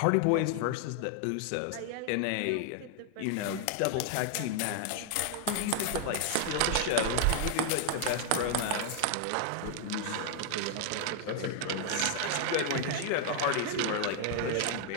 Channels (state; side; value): different; both; correlation 0.00